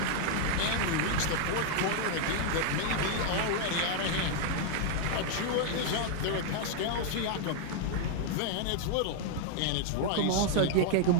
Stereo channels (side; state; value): both; different; correlation 0.00